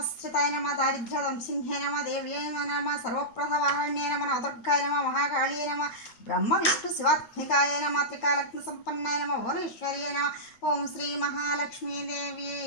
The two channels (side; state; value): right; late; 9.0 ms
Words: नमः दारिद्र्यदंसिंह्यै नमः देव्यै नमः सर्वप्रथवाहण्यै नमः नवदुर्गाय नमः महाकाळ्यै नमः ब्रह्म विष्णु शिवात्मिकाय नमः त्रिकालग्नसम्पन्नाय नमः भुवनेश्वर्यै नमः ओं श्री महालक्ष्मी